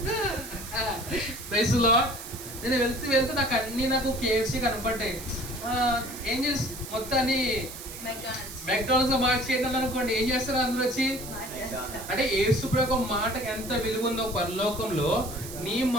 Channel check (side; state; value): right; noise; hiss, 12 dB below the sound